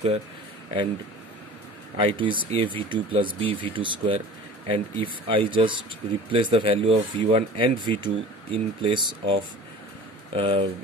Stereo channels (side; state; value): both; normal; correlation 0.41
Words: and I2 is a v2 plus b v2 square. And if I just replace the value of v1 and v2 in place of